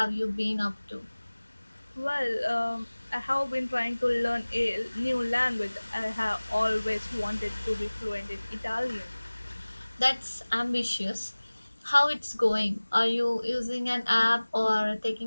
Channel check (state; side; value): inverted; both; correlation -1.00